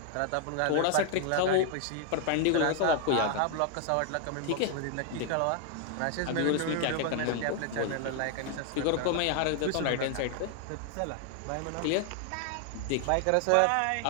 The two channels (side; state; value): both; different; correlation 0.00